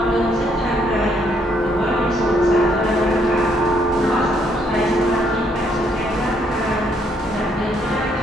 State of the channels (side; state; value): both; normal; correlation 0.71